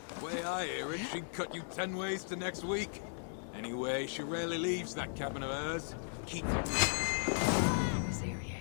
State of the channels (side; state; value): right; silent; digital silence